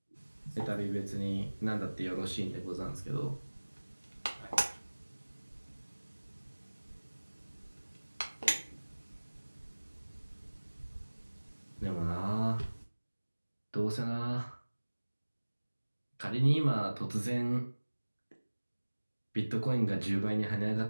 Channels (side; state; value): both; inverted; correlation -1.00